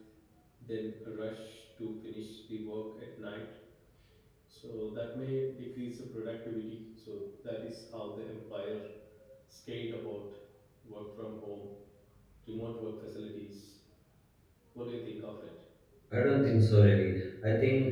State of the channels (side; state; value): both; identical; correlation 1.00